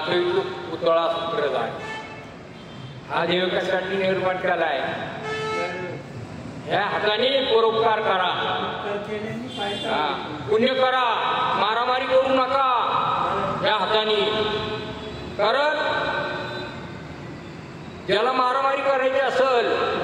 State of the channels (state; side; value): identical; both; correlation 1.00